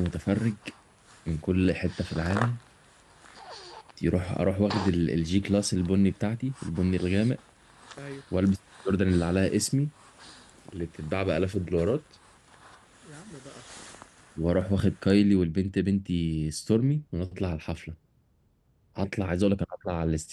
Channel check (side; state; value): both; identical; correlation 1.00